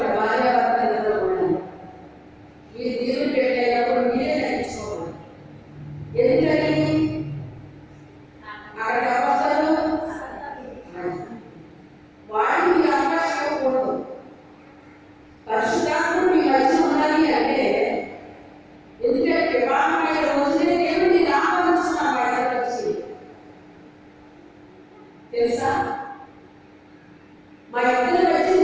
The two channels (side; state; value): both; identical; correlation 1.00